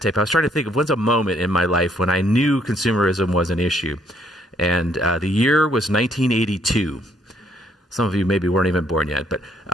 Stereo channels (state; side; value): normal; both; correlation 0.68